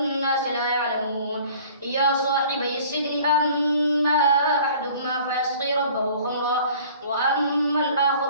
لا يعلمون يا صاحبي السجن أما أحدهما فيسقي ربه خمرا وأما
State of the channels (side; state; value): both; inverted; correlation -0.50